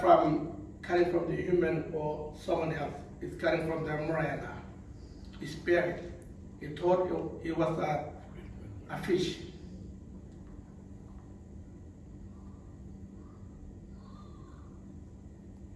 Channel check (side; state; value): both; identical; correlation 1.00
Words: coming from the human or someone else. It's coming from the Marcia, his spirit. He thought he was a fish.